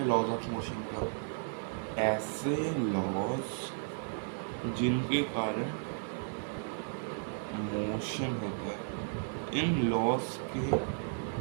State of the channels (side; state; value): left; silent; digital silence